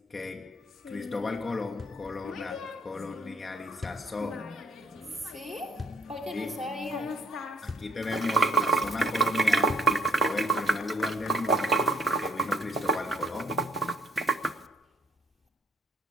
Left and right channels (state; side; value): normal; both; correlation 0.64